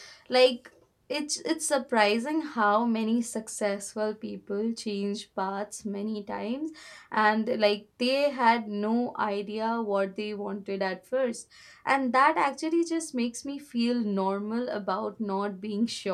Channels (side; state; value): both; identical; correlation 1.00